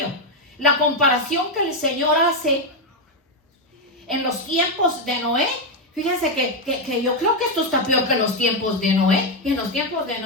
La comparación que el Señor hace en los tiempos de Noé Fíjense que yo creo que esto está peor que los tiempos de Noé. Y en los tiempos de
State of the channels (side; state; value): both; normal; correlation 0.05